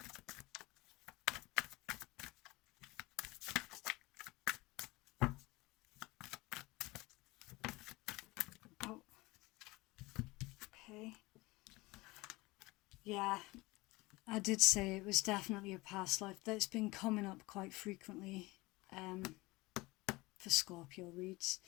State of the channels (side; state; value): right; quieter; 22.0 dB